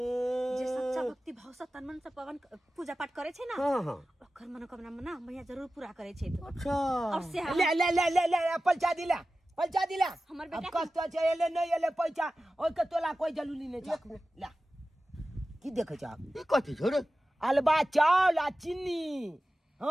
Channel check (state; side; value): normal; both; correlation 0.94